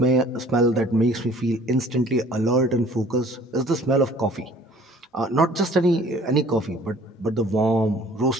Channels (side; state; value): both; normal; correlation 0.53